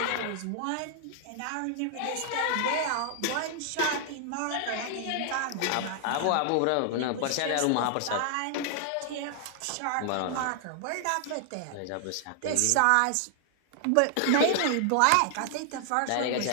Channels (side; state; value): both; different; correlation 0.00